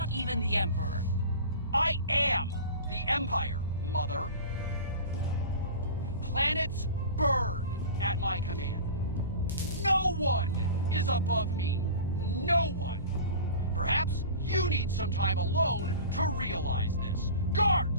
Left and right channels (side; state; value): both; inverted; correlation -0.36